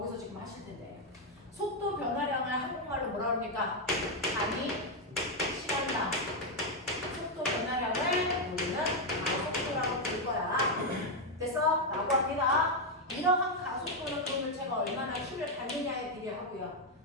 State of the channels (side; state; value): both; normal; correlation 0.02